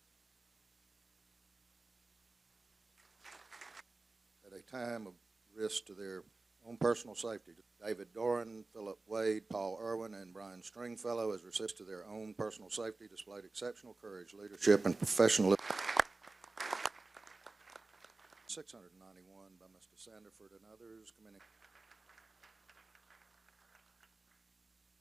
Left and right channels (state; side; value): quieter; left; 3.4 dB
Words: At a time of risk to their own personal safety, David Doran, Philip Wade, Paul Irwin, and Brian Stringfellow, as resist to their own personal safety, displayed exceptional courage, leadership, and professionalism. 691 by Mr. Sanderford and others, commending.